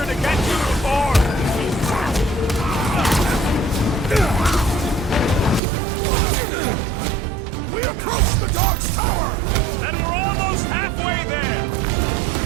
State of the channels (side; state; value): left; drops out; at 5.6 s